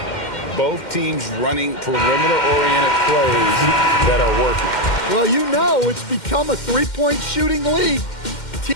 Both teams running perimeter-oriented plays that are working. Well, you know it's become a three-point shooting league.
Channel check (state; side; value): late; right; 2.1 ms